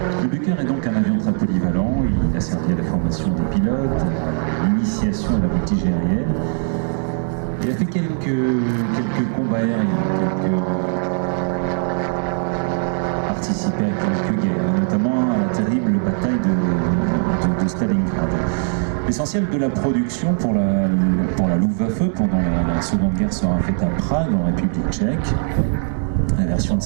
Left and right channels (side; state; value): left; silent; 62 dB below the other